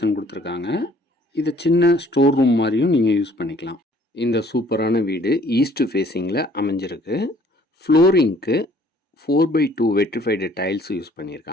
கொடுத்துருக்காங்க. இதை சின்ன ஸ்டோர் ரூம் மாதிரியும் நீங்கள் யூஸ் பண்ணிக்கலாம். இந்த சூப்பரான வீடு ஈஸ்ட் ஃபேஸிங்கில் அமைஞ்சிருக்கு. ஃப்ளோரிங்க்கு 4x2 வெட்ரிஃபைடு டைல்ஸ் யூஸ்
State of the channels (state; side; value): normal; both; correlation 0.58